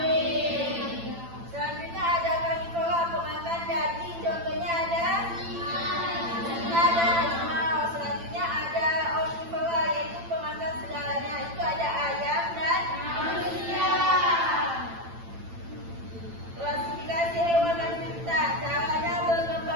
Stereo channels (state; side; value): late; left; 8.9 ms